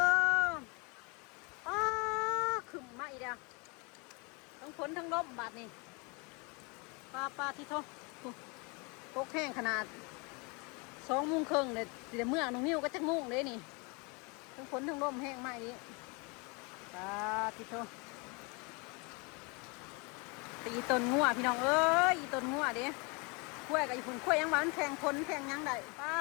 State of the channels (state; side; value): quieter; right; 30.6 dB